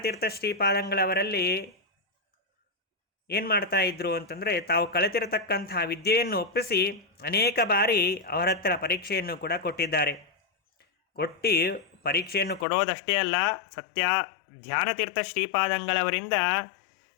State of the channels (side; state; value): right; drops out; at 12.7 s